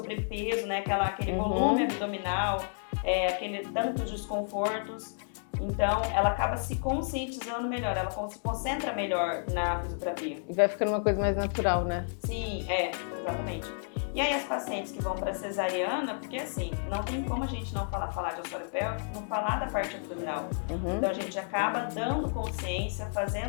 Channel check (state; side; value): silent; right; digital silence